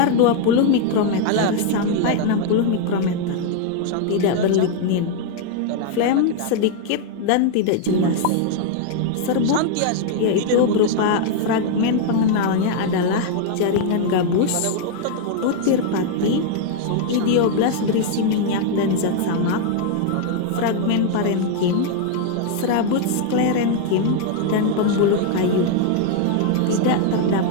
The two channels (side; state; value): both; different; correlation 0.00